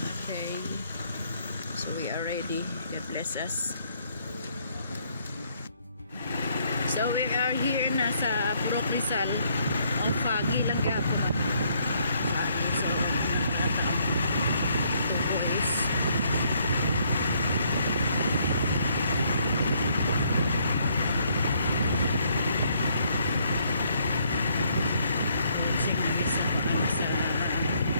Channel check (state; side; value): inverted; both; correlation -0.69